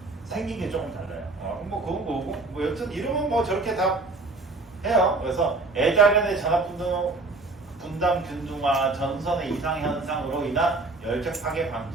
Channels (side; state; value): left; quieter; 3.4 dB